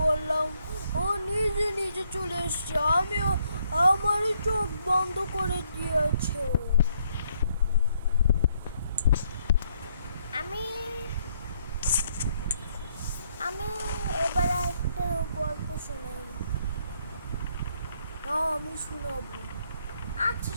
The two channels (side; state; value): both; inverted; correlation -0.71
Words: ও নিজে নিজে চলে এসছে, আমিও আমারই চোখ বন্ধ করে দিয়েছে। আমি আমি এবার একটা গল্প শোনাই। না আমি শোনাবো। আচ্ছা